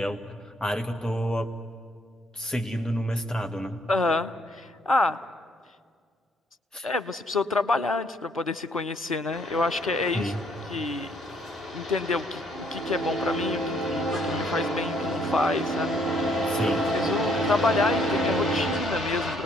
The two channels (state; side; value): normal; both; correlation 0.67